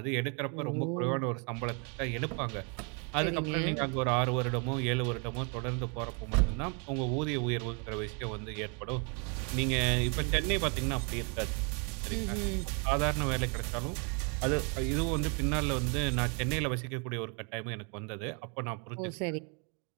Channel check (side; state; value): left; quieter; 36.2 dB